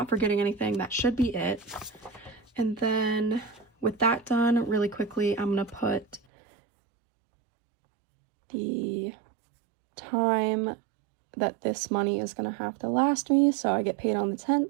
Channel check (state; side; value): drops out; left; at 6.2 s